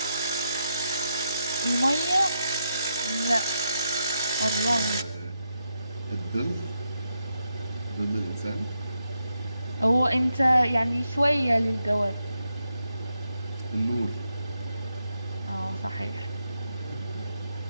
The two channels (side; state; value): both; inverted; correlation -0.82